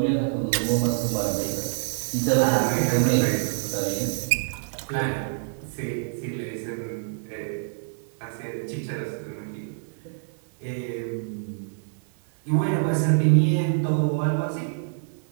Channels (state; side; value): silent; left; 57 dB below the other